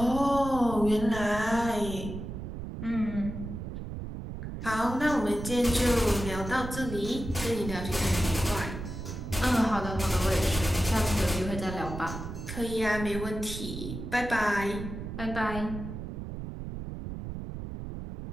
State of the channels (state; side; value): noise; right; rumble, 8 dB below the sound